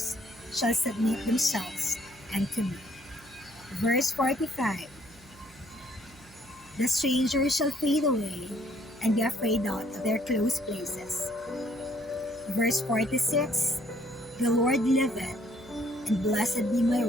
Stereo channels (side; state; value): right; noise; hum, 25 dB below the sound